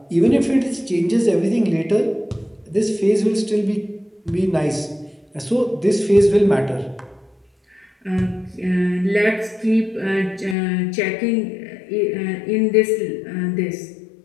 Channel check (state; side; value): drops out; right; at 10.6 s